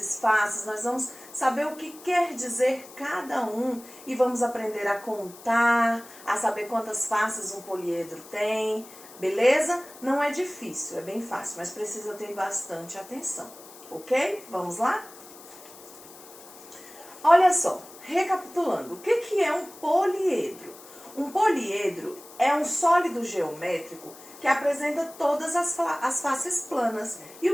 faces, nós vamos saber o que quer dizer cada um e vamos aprender a contar, a saber quantas faces um poliedro tem, beleza? Não é difícil, é bem fácil, mas precisa ter bastante atenção, ok? Vamos lá? Olha só, recapitulando, o que é um poliedro? Um poliedro é um sólido geométrico que apresenta todas as faces planas. E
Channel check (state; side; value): noise; left; hiss, 19 dB below the sound